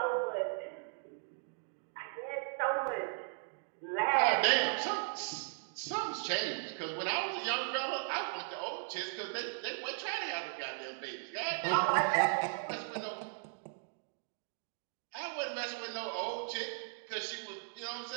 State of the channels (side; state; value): left; silent; digital silence